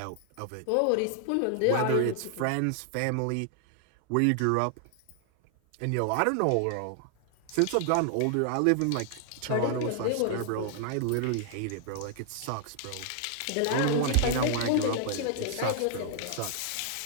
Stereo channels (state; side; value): different; both; correlation 0.00